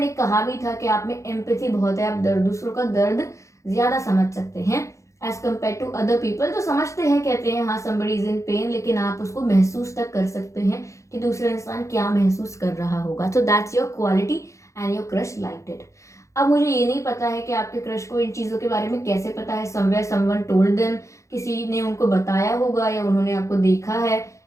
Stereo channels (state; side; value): late; right; 0.15 ms